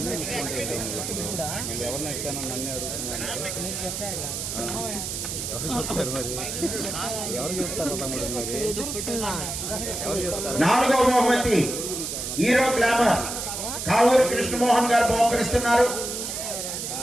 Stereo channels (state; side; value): noise; right; hiss, 4 dB below the sound